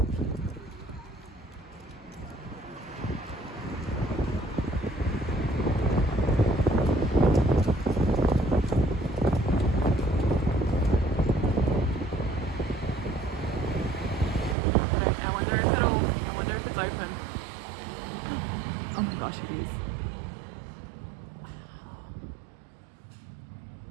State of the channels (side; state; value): left; drops out; at 14.6 s